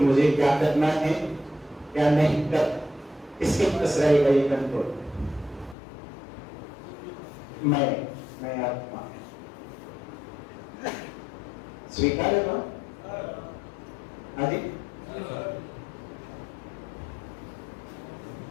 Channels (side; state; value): right; drops out; at 5.8 s